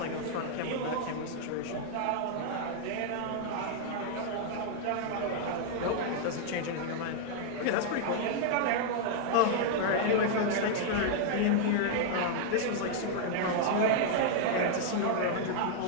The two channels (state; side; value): different; both; correlation -0.01